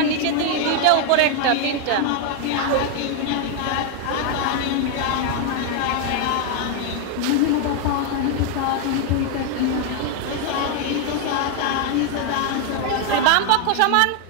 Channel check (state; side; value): different; both; correlation 0.01